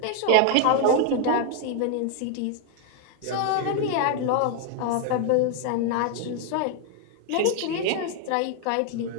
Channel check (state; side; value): different; both; correlation 0.00